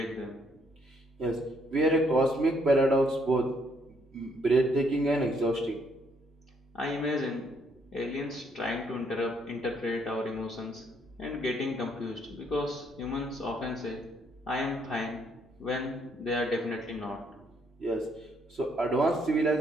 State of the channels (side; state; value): both; normal; correlation 0.70